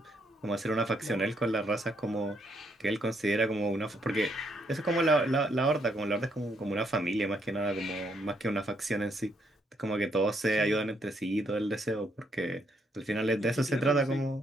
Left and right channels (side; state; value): both; normal; correlation 0.74